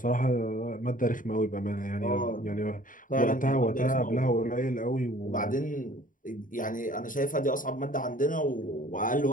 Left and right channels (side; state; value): right; late; 0.39 ms